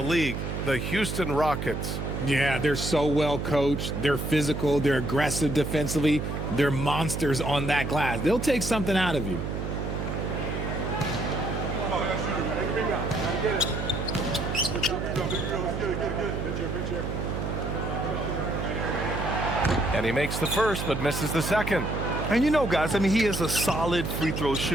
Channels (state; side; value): noise; right; hum, 3 dB below the sound